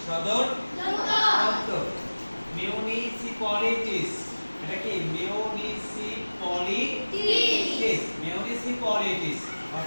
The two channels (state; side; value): inverted; both; correlation -1.00